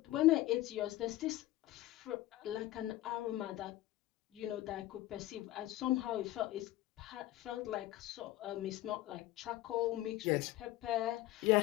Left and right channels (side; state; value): right; quieter; 16.1 dB